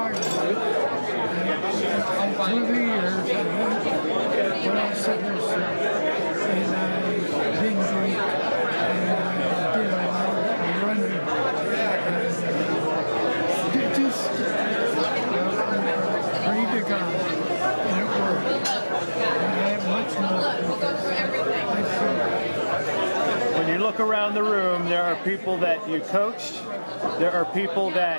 through the years. When I said this, and I didn't drink, and I did a lot of running. Just pray to God, and it worked. And I have much more. When you look around the room, there are people that you coached, there are people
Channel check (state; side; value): inverted; both; correlation -1.00